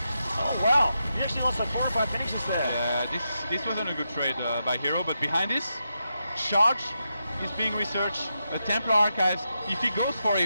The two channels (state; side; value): inverted; both; correlation -0.86